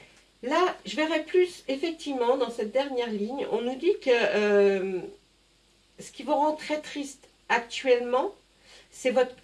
là, je verrai plus, effectivement, dans cette dernière ligne, on nous dit que ce qui vous rend très triste actuellement, c'est votre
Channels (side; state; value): both; identical; correlation 1.00